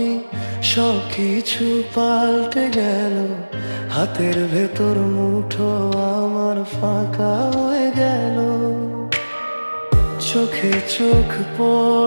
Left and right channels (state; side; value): inverted; both; correlation -1.00